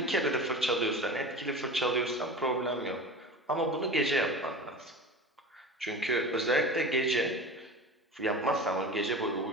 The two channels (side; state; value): both; normal; correlation 0.33